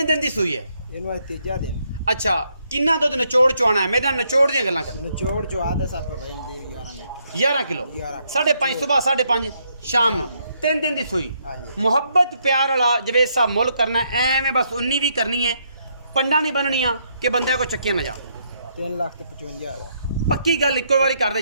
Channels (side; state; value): both; inverted; correlation -0.74